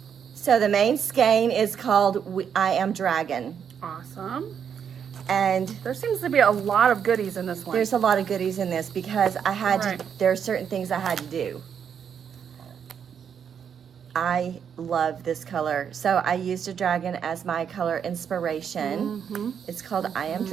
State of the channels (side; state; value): left; quieter; 7.7 dB